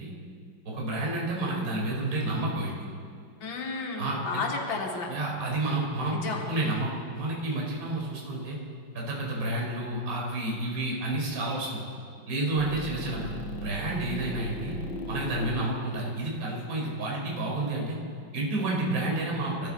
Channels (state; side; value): late; right; 5.2 ms